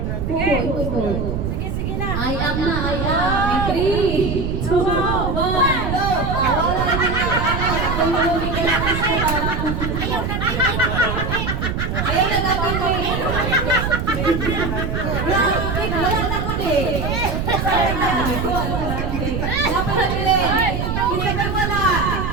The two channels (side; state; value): right; noise; rumble, 2 dB below the sound